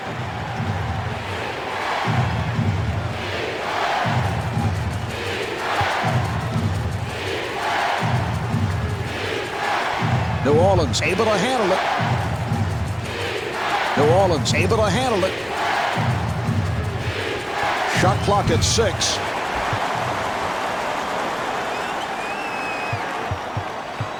New Orleans able to handle it. New Orleans able to handle it. Shot clock at 6.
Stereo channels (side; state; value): both; identical; correlation 1.00